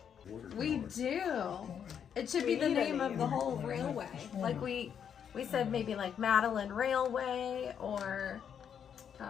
Water We tower. do. It should be the name of the whole railway. Like we said maybe like Madeleine Railway or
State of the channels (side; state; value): right; quieter; 8.1 dB